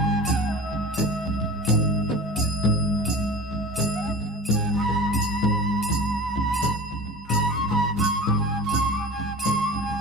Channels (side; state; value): both; normal; correlation 0.35